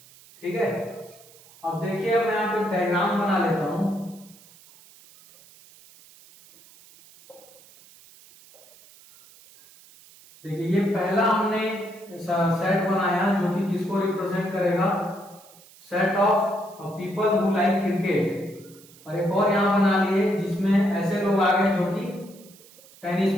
ठीक है, अब देखिए मैं यहाँ पे डायग्राम बना लेता हूं। देखिए ये पहला हमने सेट बनाया जो कि किसको रिप्रेजेंट करेगा, set of people who like cricket, और एक और यहां बना लिए जिसमें ऐसे लोग आ गए जो कि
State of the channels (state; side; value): noise; right; hiss, 24 dB below the sound